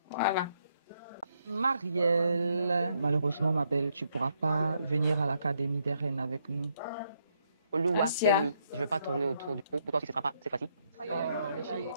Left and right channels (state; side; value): inverted; both; correlation -0.75